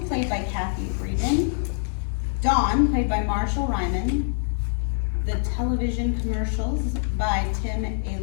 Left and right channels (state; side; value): silent; right; 62 dB below the other